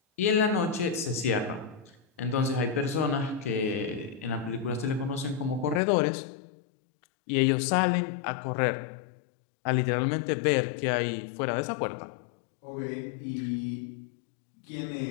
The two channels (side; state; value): right; drops out; at 5.8 s